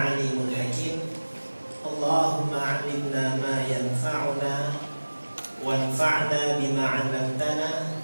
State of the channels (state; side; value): inverted; both; correlation -1.00